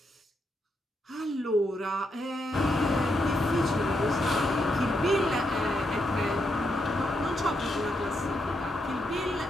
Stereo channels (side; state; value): both; normal; correlation 0.81